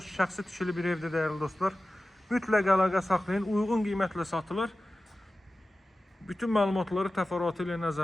Şəxsi tikili bir evdir dəyərli dostlar. Mütləq əlaqə saxlayın. Uyğun qiymətlə satılır. Bütün məlumatları təfərrüatı ilə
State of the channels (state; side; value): normal; both; correlation 0.95